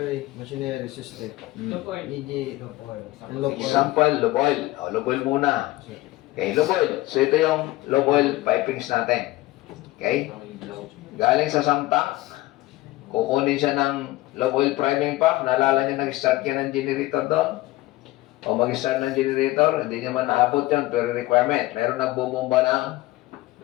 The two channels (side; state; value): right; quieter; 18.3 dB